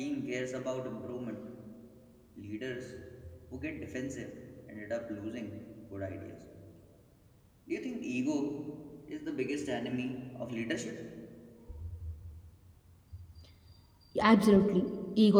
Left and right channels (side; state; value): both; identical; correlation 1.00